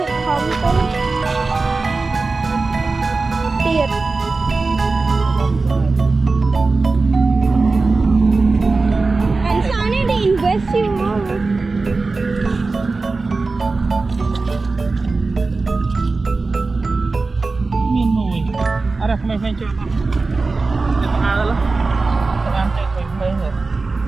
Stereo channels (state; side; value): quieter; left; 3.8 dB